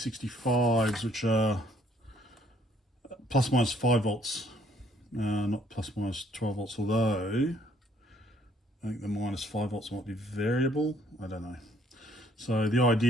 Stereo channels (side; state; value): both; normal; correlation 0.64